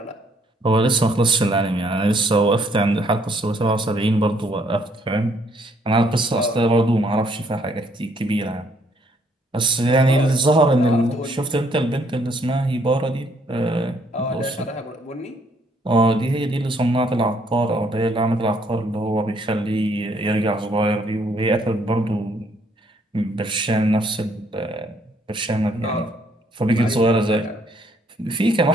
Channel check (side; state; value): both; normal; correlation 0.67